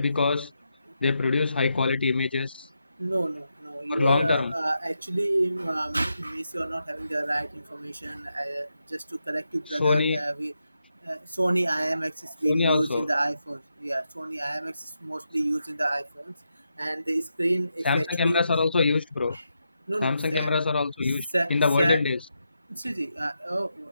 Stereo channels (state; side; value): inverted; both; correlation -0.85